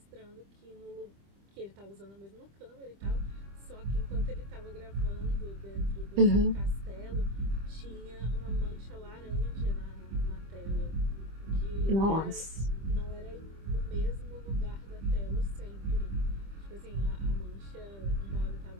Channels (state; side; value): late; left; 25 ms